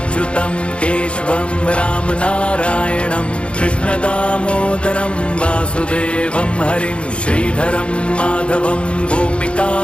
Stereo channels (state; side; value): late; right; 0.058 ms